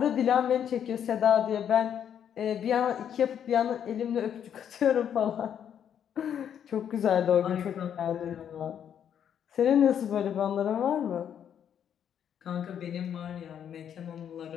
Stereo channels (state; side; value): quieter; right; 9.0 dB